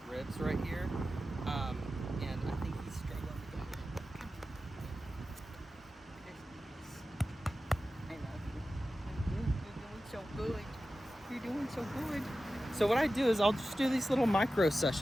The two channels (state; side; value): normal; both; correlation 0.94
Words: ribs right here, and I think he's struggling to get it. I love you. You're doing so good. You're doing so good. So what I do is I'll just do these little micro